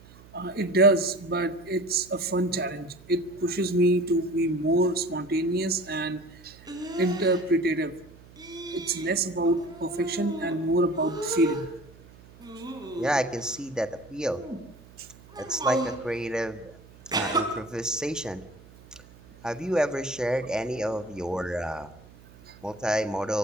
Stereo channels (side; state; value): right; noise; hum, 22 dB below the sound